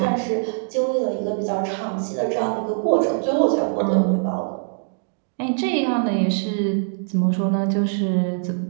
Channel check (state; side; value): silent; left; 64 dB below the other